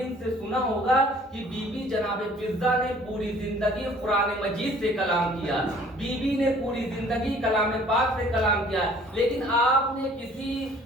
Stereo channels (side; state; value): both; normal; correlation 0.54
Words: سے سنا ہوگا کہ بی بی جناب فضہ نے پوری زندگی قرآن مجید سے کلام کیا، بی بی نے پوری زندگی کلام پاک سے کلام کیا، لیکن آپ نے کسی